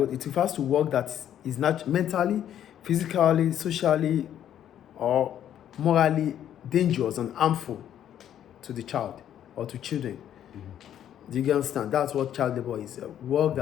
it refers to work that is not mentally, physically, socially, or morally dangerous and harmful to the child or to children. Do you understand? That's what child labor is. Work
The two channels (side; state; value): right; quieter; 10.5 dB